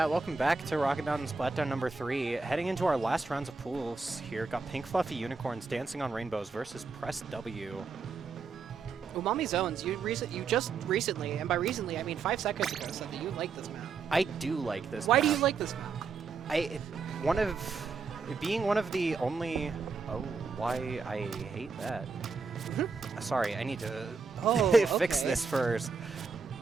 welcome back to Rocket Mountain Splatdown number 3. Heading into our last rounds of pools here. Got Pink Fluffy Unicorns Dancing on Rainbows versus Press W. Umami Zones, you just recently, and by recently I mean 5 seconds ago, said that you like this map. I do like this Why map. do you like this map? Being one of the only... Oh, why I hate that. Sorry, I need to fix okay. this first.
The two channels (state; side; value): quieter; left; 4.8 dB